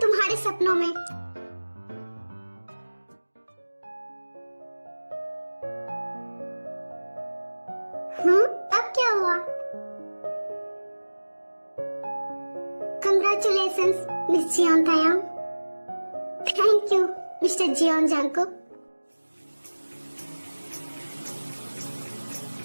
तुम्हारे सपनों में। अब क्या हुआ? Congratulations miss Jeon Taeyang. Thank you mister Jeon Jungkook.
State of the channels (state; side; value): inverted; both; correlation -1.00